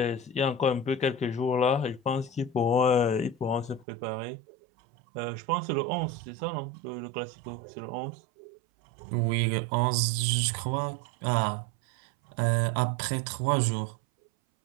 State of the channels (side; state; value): left; drops out; at 3.9 s